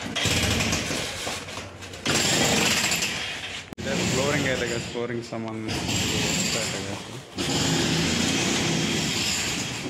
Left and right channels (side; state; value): both; identical; correlation 1.00